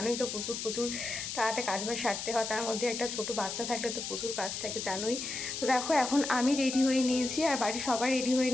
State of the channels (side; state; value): left; noise; hiss, 5 dB below the sound